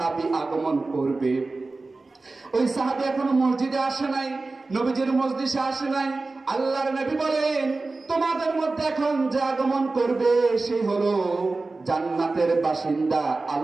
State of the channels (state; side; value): quieter; left; 3.5 dB